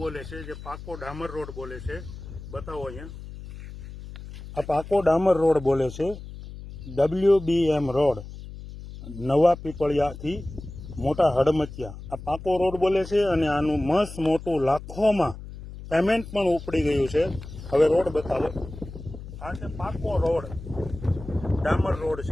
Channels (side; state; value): left; noise; hum, 13 dB below the sound